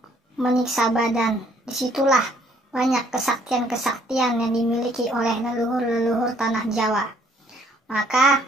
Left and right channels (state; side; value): normal; both; correlation 0.63